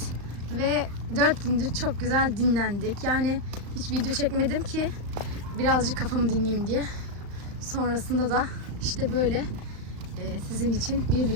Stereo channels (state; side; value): late; left; 35 ms